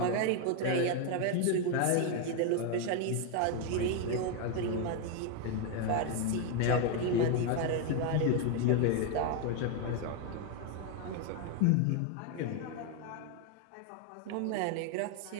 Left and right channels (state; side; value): different; both; correlation 0.01